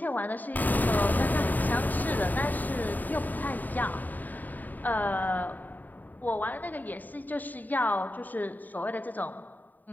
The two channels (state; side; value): late; right; 0.085 ms